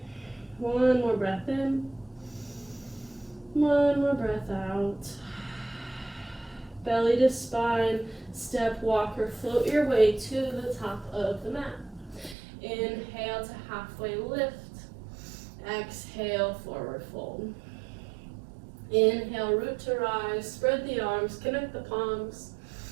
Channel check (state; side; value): drops out; left; at 12.4 s